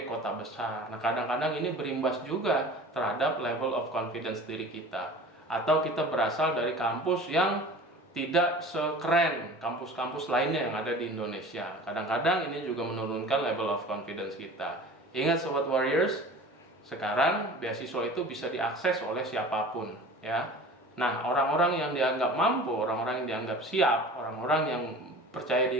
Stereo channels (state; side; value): normal; both; correlation 0.40